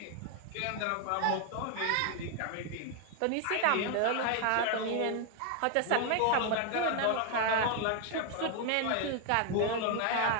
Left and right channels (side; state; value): both; different; correlation 0.01